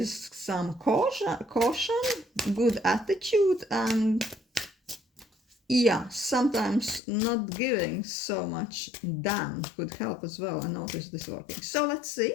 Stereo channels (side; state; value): right; drops out; at 7.0 s